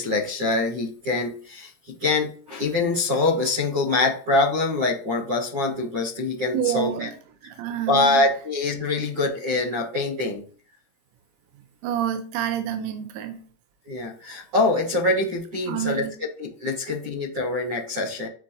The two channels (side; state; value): left; late; 17 ms